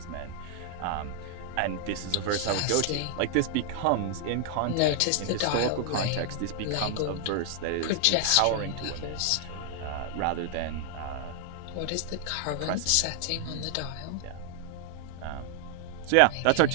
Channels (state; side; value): different; both; correlation 0.00